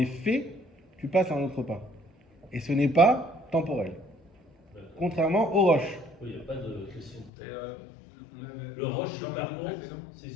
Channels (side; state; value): right; drops out; at 7.3 s